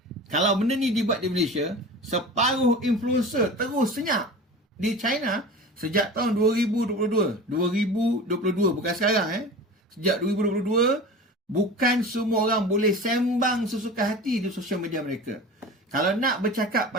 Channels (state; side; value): normal; both; correlation 0.35